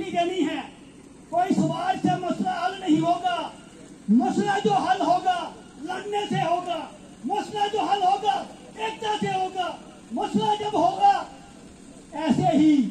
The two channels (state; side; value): identical; both; correlation 1.00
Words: देनी है, कोई सवाल से मसला हल नहीं होगा। मसला जो हल होगा लड़ने से होगा, मसला जो हल होगा एकता से होगा। मसला जब होगा ऐसे ही